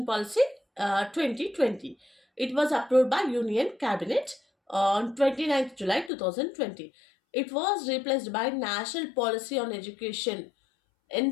Policy 2020. It was approved by Union Cabinet on 29th July 2020. It was replaced by National Policy on Education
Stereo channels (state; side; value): drops out; right; at 6.1 s